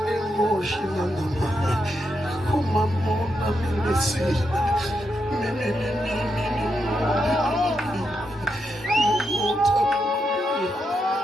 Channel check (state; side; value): normal; both; correlation 0.83